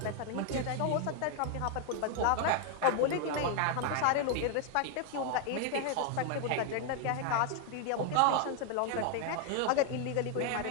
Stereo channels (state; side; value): different; both; correlation 0.00